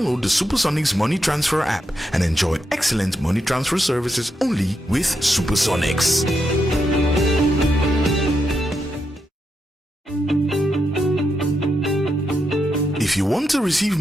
the Supersonics Money Transfer app and enjoy excellent money transfer services only with Supersonics. If you want to receive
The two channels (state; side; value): normal; both; correlation 0.83